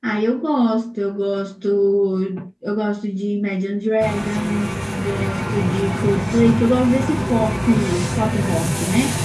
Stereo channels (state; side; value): identical; both; correlation 1.00